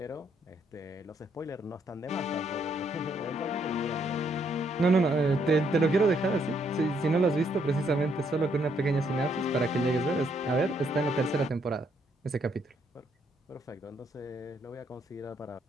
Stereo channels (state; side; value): normal; both; correlation 0.72